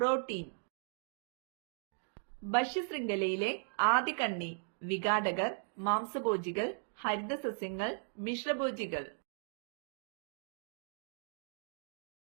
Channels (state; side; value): silent; left; digital silence